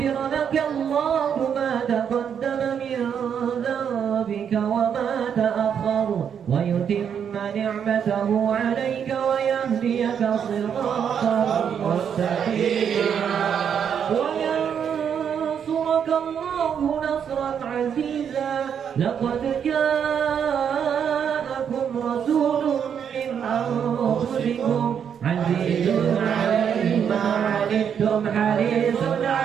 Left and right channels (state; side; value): quieter; left; 7.9 dB